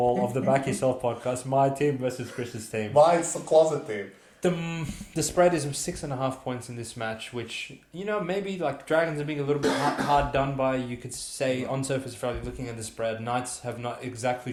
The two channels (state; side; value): identical; both; correlation 1.00